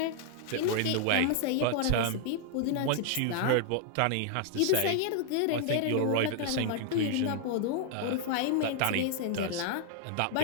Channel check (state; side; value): different; both; correlation -0.01